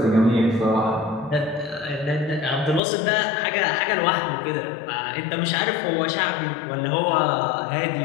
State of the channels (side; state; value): right; drops out; at 2.8 s